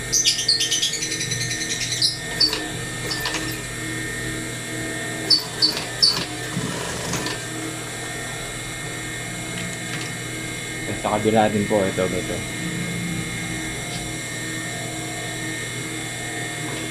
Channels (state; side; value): identical; both; correlation 1.00